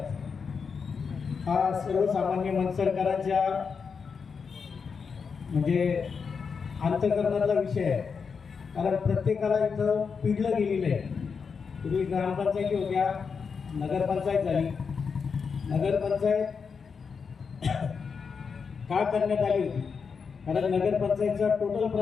हा सर्वसामान्य मनसरकरांच्या म्हणजे अंतःकरणातला विषय आहे. कारण प्रत्येकाला इथं पिडलं गेलेलं आहे. पूर्वी ग्रामपंचायती होत्या, नगरपंचायत झाली. नगरपंचायत का करण्यात आली होती? कारण नगरपंचायतचा टोटल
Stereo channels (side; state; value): right; quieter; 5.7 dB